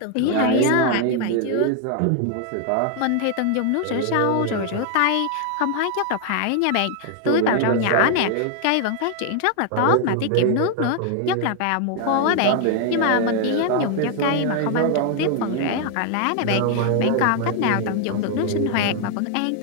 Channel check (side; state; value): both; different; correlation 0.00